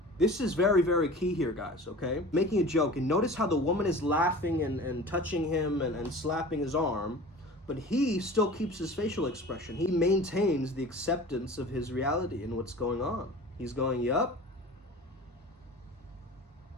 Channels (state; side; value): normal; both; correlation 0.39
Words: This is very, very key here, guys, okay? Making a joke, and notice how the woman is laughing and touching him and slapping his arm, but he still keeps his facial expression. He maintains the acceptance of his reality and what's going on. He's going, yup.